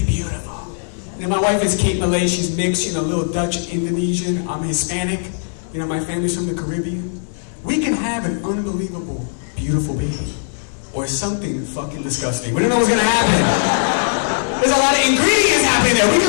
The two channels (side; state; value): right; silent; 57 dB below the other